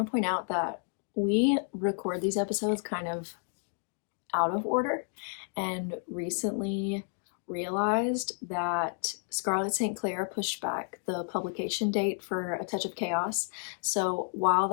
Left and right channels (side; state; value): right; silent; 57 dB below the other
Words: to point out that we record these episodes kind of out of order, and recently realized that Scarlet St. Clair pushed back the publication date for A Touch of Chaos. So while